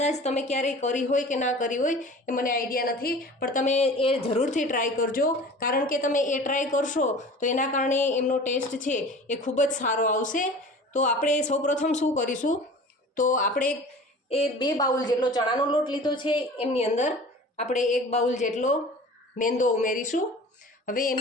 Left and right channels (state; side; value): normal; both; correlation 0.41